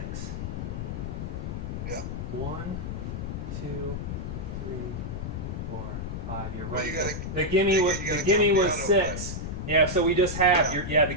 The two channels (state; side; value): noise; left; rumble, 5 dB below the sound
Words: Yeah. 1, 2, 3, 4, 5. You're Well, right. you gotta- the gimme you was gotta the gimme count the was auto 6. Yeah, so we just have the